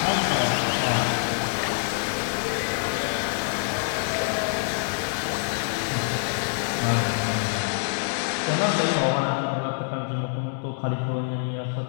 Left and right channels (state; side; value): silent; right; digital silence